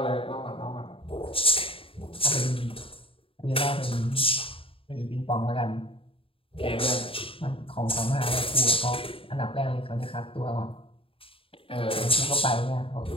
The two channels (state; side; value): late; right; 0.27 ms